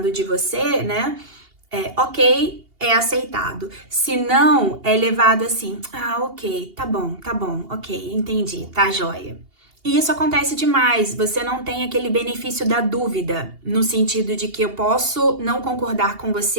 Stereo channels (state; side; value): late; left; 2.8 ms